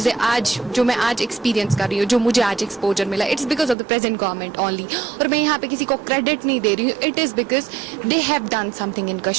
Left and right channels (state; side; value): drops out; left; at 3.8 s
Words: मैं आज एक्सपीरियंस कर रही हूँ, जो मुझे आज एक्सपोजर मिला, it's because of the present government only. और मैं यहाँ पे किसी को क्रेडिट नहीं दे रही हूँ, it is because they have done something इन